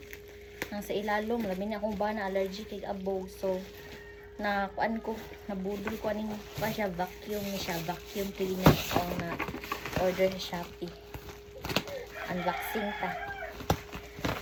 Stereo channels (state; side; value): identical; both; correlation 1.00